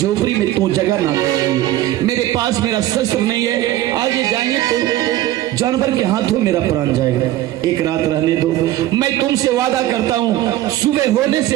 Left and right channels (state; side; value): quieter; left; 14.3 dB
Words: में तू जगह ना दे, मेरे पास मेरा शस्त्र नहीं है। आगे जाएंगे तो जानवर के हाथों मेरा प्राण जाएगा। एक रात रहने दो। मैं तुमसे वादा करता हूँ, सुबह होने से